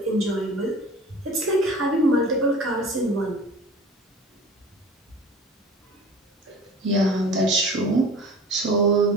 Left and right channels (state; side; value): normal; both; correlation 0.41